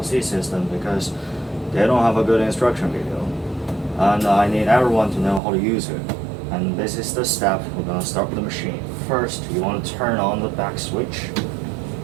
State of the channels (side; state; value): left; drops out; at 5.4 s